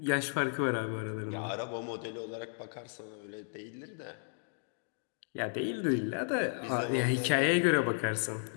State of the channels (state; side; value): silent; right; digital silence